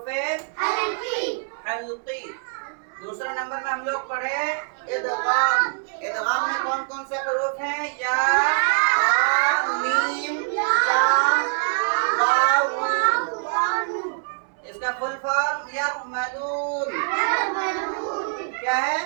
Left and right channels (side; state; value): left; silent; 63 dB below the other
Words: हल्की। दूसरे नंबर में हम लोग पढ़े इदगाम। इदगाम में कौन कौन से हरूफ हैं? या, मीम, लाम, वाव, नून। इसका फुल फॉर्म यरमलून। क्या है?